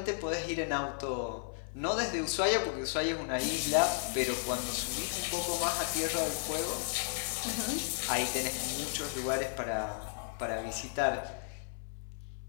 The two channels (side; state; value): right; silent; 55 dB below the other